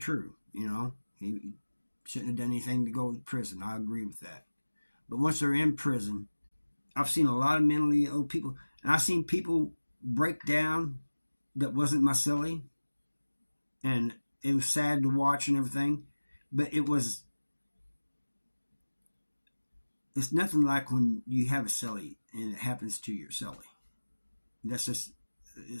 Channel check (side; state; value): both; inverted; correlation -1.00